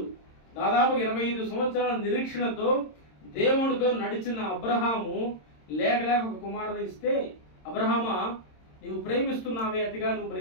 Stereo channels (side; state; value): right; late; 26 ms